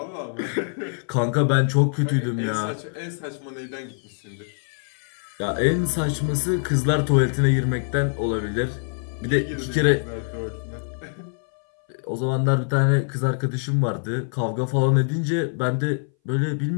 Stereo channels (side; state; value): right; silent; 60 dB below the other